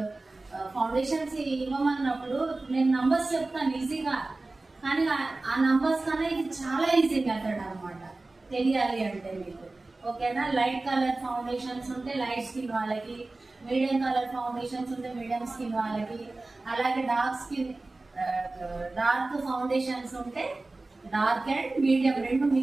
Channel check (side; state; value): left; quieter; 3.2 dB